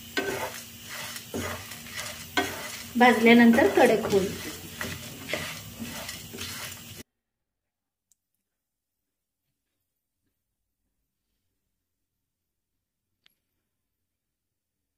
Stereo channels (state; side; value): identical; both; correlation 1.00